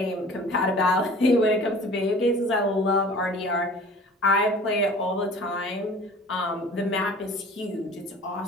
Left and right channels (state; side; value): normal; both; correlation 0.45